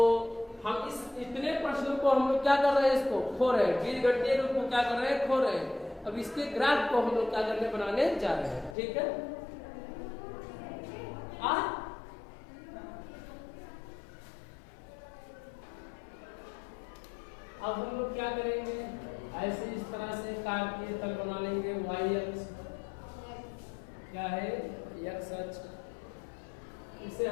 हम इस इतने प्रश्नों को हम लोग क्या कर रहे हैं, इसको खो रहे हैं, बीजगणितीय रूप को क्या कर रहे हैं, खो रहे हैं। अब इसके ग्राफ को हम लोग क्या करने बनाने जा रहे हैं, ठीक है। अब हम लोग क्या करेंगे, ऐसे इस तरह से कार्तीय तल बना लेंगे, y अक्ष क्या है x अक्ष, इसे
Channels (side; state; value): right; drops out; at 8.8 s